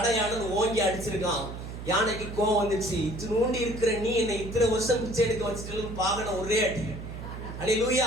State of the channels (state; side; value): noise; right; hum, 9 dB below the sound